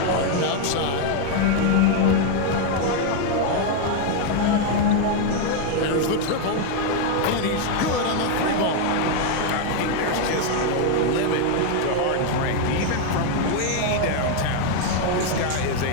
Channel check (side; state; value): both; different; correlation 0.01